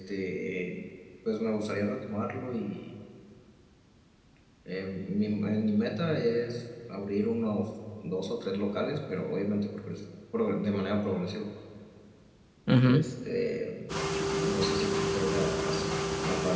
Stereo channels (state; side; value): identical; both; correlation 1.00